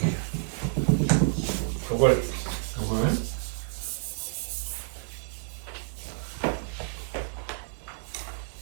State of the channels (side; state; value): left; silent; digital silence